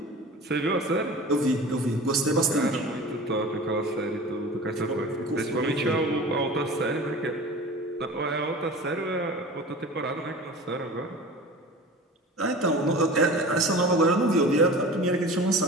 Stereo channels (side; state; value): both; normal; correlation 0.37